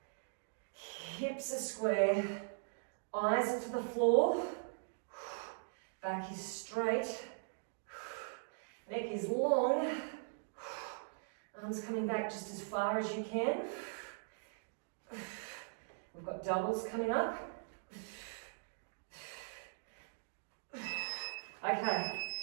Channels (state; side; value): silent; left; digital silence